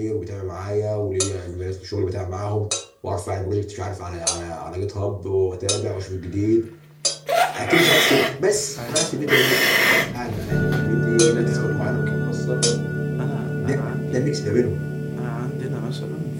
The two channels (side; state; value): both; identical; correlation 1.00